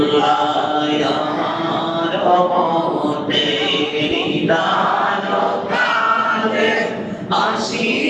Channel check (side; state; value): both; identical; correlation 1.00